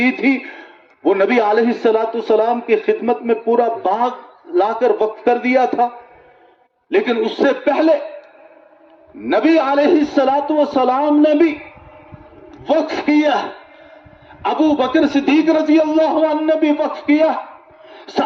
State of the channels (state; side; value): identical; both; correlation 1.00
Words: تھی وہ نبی علیہ السلام کی خدمت میں پورا باغ لا کر وقف کر دیا تھا، لیکن اس سے پہلے نبی علیہ السلام نے بھی وقف کیا، ابو بکر صدیق رضی اللہ عنہ نے بھی وقف کیا،